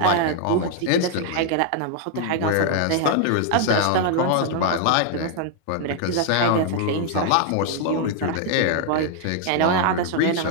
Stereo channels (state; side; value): different; both; correlation 0.00